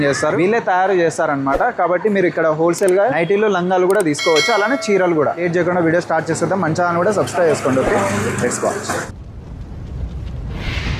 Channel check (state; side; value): identical; both; correlation 1.00